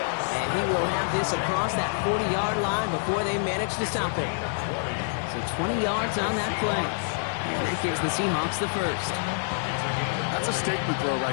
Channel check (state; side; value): silent; right; 58 dB below the other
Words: he will have this across that 40-yard line before they manage to stop it. So 20 yards on that play. And that gives the Seahawks the first. That's a statement throw